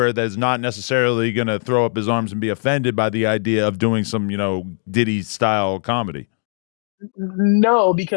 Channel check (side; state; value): right; silent; digital silence